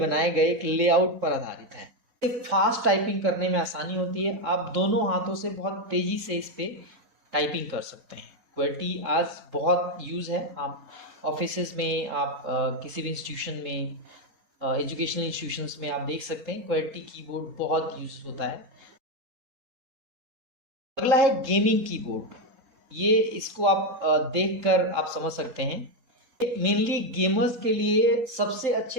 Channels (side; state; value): left; late; 4.0 ms